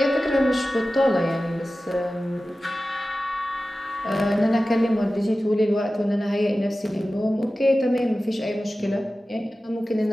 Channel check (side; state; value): both; normal; correlation 0.95